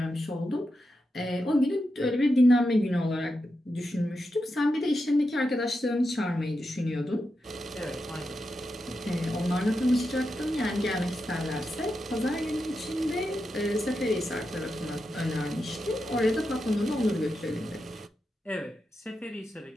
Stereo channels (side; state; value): both; normal; correlation 0.88